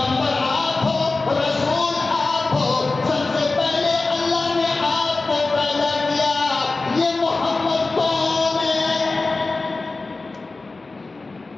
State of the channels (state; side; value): quieter; right; 3.5 dB